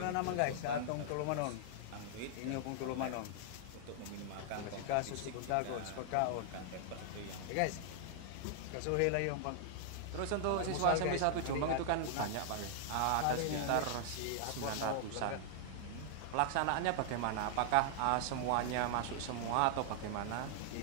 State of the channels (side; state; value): both; different; correlation -0.01